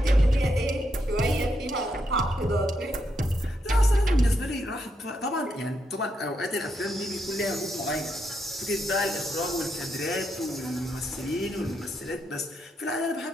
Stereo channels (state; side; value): normal; both; correlation 0.80